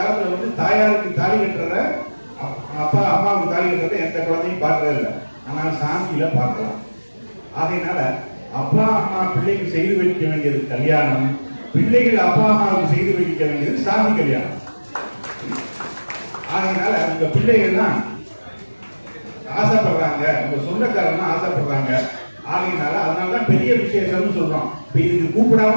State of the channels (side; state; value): both; inverted; correlation -1.00